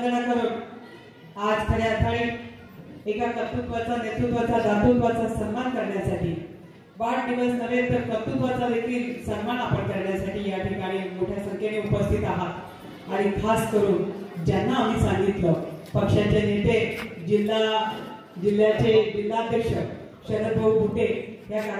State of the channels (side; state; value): both; identical; correlation 1.00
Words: करून आज खऱ्या अर्थाने एका कर्तृत्वाचा, नेतृत्वाचा, दातृत्वाचा सन्मान करण्यासाठी, वाढदिवस नव्हे तर कर्तृत्वाचा देखील सन्मान आपण करण्यासाठी या ठिकाणी मोठ्या संख्येने उपस्थित आहात। आणि खास करून ज्यांना आम्ही सांगितलं, पक्षाचे नेते, जिल्ह्याचे जिल्हाध्यक्ष शरद भाऊ बुटे या